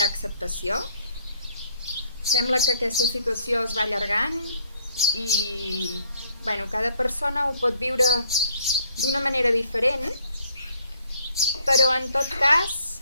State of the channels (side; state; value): both; inverted; correlation -0.66